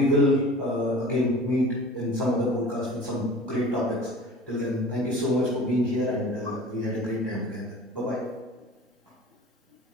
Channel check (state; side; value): normal; both; correlation 0.41